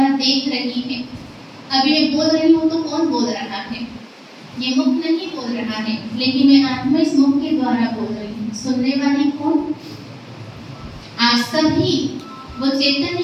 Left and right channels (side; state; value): both; identical; correlation 1.00